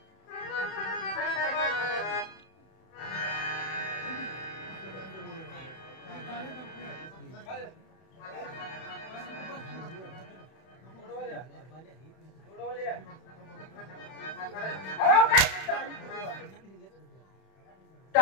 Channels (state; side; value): late; right; 31 ms